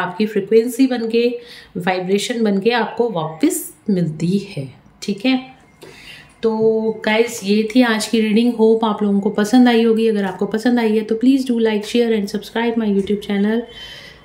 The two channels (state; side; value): identical; both; correlation 1.00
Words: फ्रिक्वेंसी बन के, वाइब्रेशन बन के आपको वापस मिलती है। ठीक है, तो गाइस ये थी आज की रीडिंग। होप आप लोगों को पसंद आई होगी। अगर आपको पसंद आई है तो please do like, share and subscribe my YouTube channel.